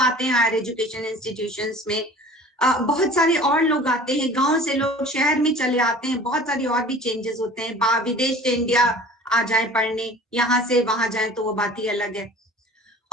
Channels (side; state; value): both; normal; correlation 0.44